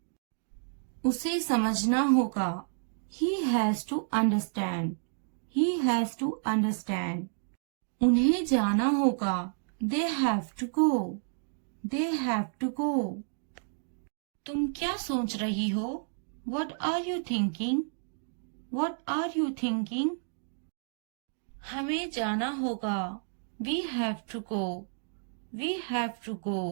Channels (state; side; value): silent; left; digital silence